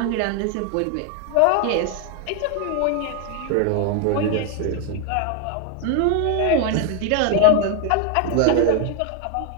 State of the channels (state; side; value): different; both; correlation 0.01